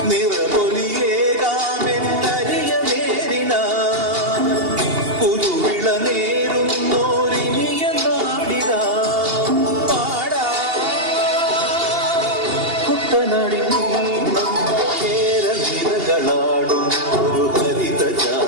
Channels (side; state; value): left; late; 2.8 ms